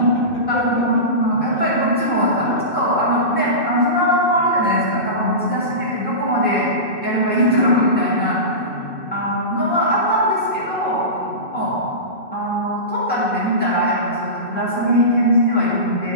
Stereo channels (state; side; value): late; right; 2.6 ms